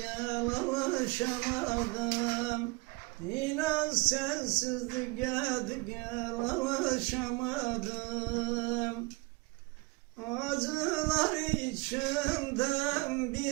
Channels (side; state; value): left; quieter; 24.2 dB